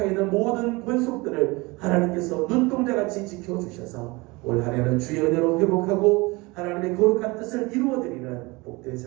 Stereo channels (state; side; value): quieter; left; 24.1 dB